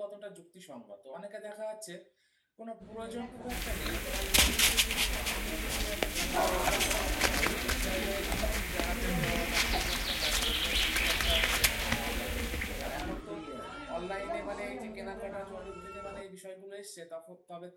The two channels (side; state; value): both; identical; correlation 1.00